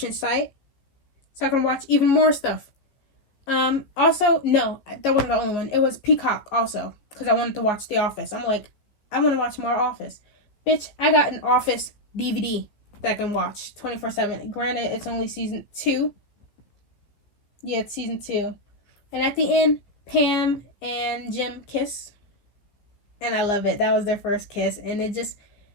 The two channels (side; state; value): right; late; 15 ms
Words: site so I can watch even more stuff. Also, no, that wasn't the only one. It was Peacock also, because I wanted to watch The Office. I'm like, I want to watch more Office. Bitch, I got an Office DVD that I can watch 24/7. Granted, it's only season 2. Yeah, it's season 2. And at the end, Pam and Jim kiss. And I love it. That was their first kiss. And it just,